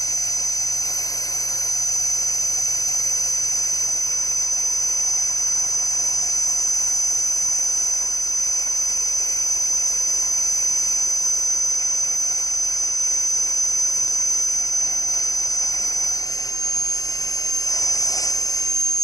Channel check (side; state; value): right; late; 0.17 ms